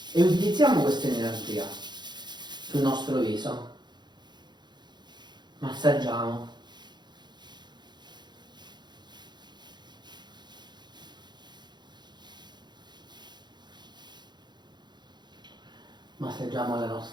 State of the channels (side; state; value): left; late; 0.21 ms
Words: e utilizziamo questa energia sul nostro viso. Massaggiamo. Massaggiamo la